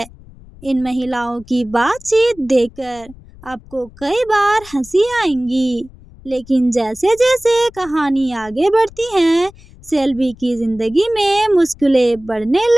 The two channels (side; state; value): left; noise; rumble, 22 dB below the sound